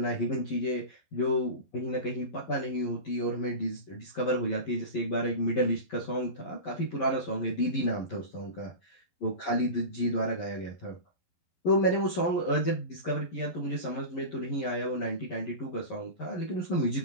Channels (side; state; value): right; late; 11 ms